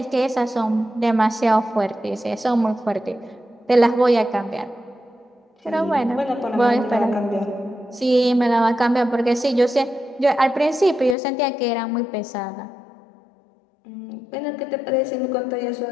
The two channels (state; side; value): drops out; right; at 11.2 s